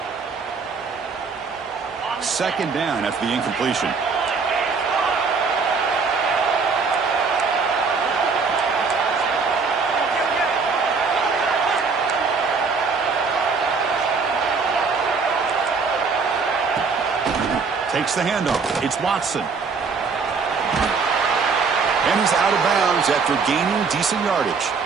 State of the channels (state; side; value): quieter; left; 5.0 dB